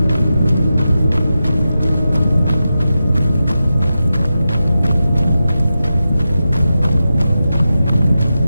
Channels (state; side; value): inverted; both; correlation -0.91